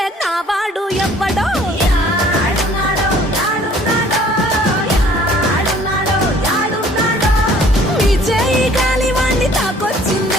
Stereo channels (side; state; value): both; normal; correlation 0.55